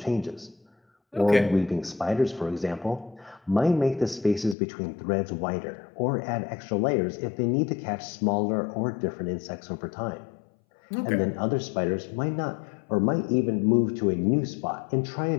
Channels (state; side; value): drops out; right; at 4.5 s